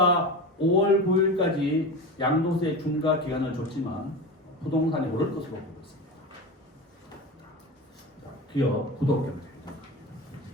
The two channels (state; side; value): normal; both; correlation 0.26